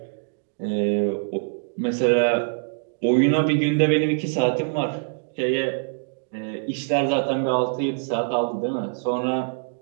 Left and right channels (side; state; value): left; silent; digital silence